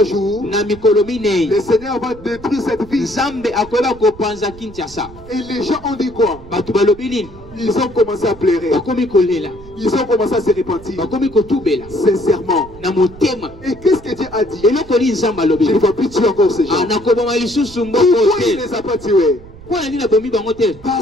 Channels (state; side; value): noise; right; rumble, 19 dB below the sound